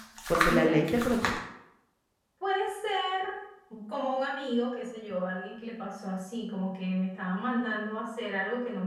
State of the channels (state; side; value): identical; both; correlation 1.00